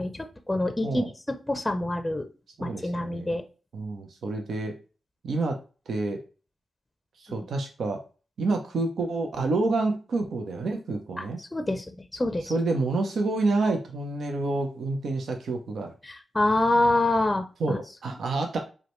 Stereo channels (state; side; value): normal; both; correlation 0.87